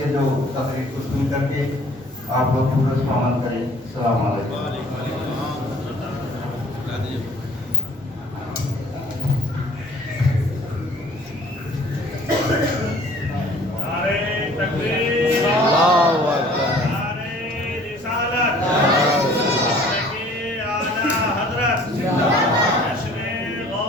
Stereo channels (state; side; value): normal; both; correlation 0.53